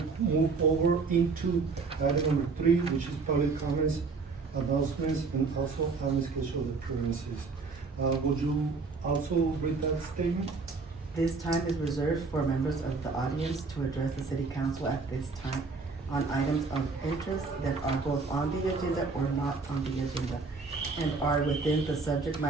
move over into item number 3, which is public comments, announcements, and also administration appearances. Would you also read that statement? This time is reserved for members of the audience to address the City Council at this time on items of interest that are both on the agenda or not on the agenda and are within the subject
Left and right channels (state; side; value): quieter; left; 4.3 dB